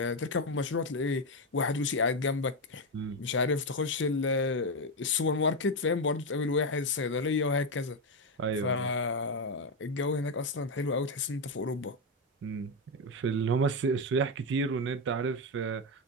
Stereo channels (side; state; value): both; normal; correlation 0.08